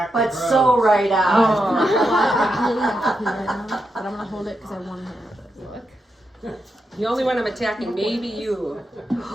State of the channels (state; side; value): normal; both; correlation 0.85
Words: the But grows. so right on. I really have to pee right now, but I'm gonna hold it because I want to have it. Look. The only one I'm attacking, maybe you.